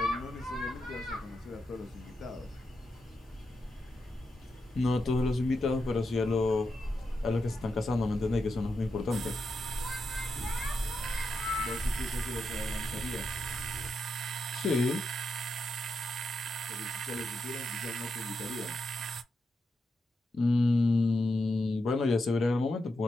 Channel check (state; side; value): normal; both; correlation 0.85